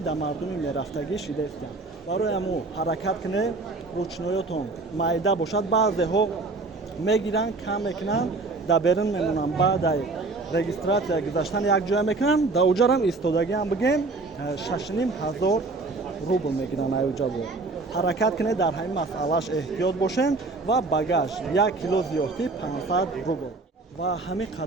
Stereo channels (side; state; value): left; quieter; 3.5 dB